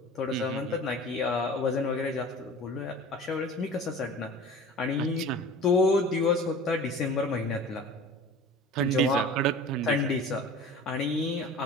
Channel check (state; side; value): normal; both; correlation 0.40